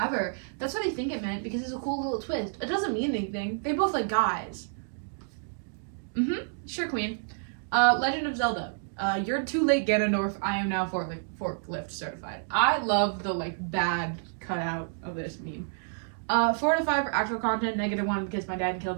That's what I think it meant, because it's a cool little twist. It doesn't mean anything. They both like guys. Sure, queen. Legend of Zelda. You're too late, Ganondorf. I am now forklift certified. I love the like bad cutout of this meme. 4 to 5 for actual content, -1 because my dad killed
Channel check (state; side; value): silent; left; digital silence